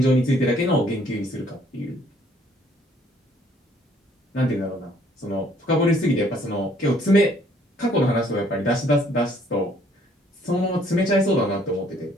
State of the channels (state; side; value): normal; both; correlation 0.62